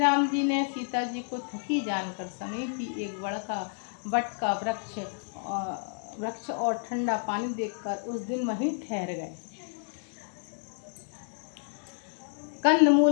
जी ने सीता जी को थकी जानकर समीपी एक बट का वृक्ष और ठंडा पानी देखकर उस दिन वहीं ठहर गए। कंद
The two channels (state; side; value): silent; right; digital silence